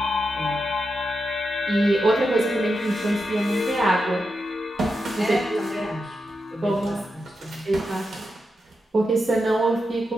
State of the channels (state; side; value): normal; both; correlation 0.87